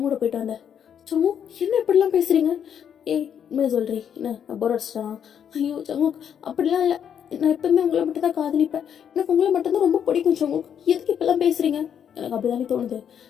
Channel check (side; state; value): right; quieter; 8.5 dB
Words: கூட போயிட்டு வந்தேன். சமு, என்ன இப்படிலாம் பேசுறீங்க? ஏய், உண்மையை சொல்றீ என்ன, நான் போர் அடிச்சிட்டானா? ஐயோ சமு, அப்படிலாம் இல்லை. நான் எப்பவுமே உங்களை மட்டும் தான் காதலிப்பேன். எனக்கு உங்களை மட்டும்தான் ரொம்ப பிடிக்கும் சமு. எதுக்கு இப்பெல்லாம் பேசுறீங்க? எனக்கு அப்படிதானே தோணுது.